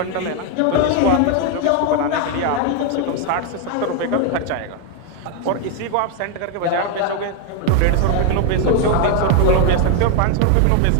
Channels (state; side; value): different; both; correlation 0.01